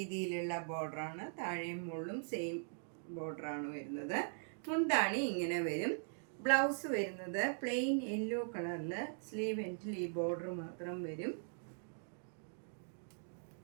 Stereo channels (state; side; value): silent; left; digital silence